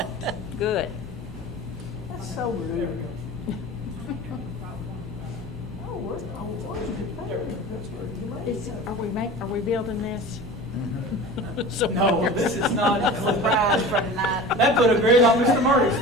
good. That's so rude. Oh, what? That's where you made it. Are we building this? So- No, this is not. Surprise for tonight. That put a grin on Mr. Murray's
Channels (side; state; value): both; normal; correlation 0.36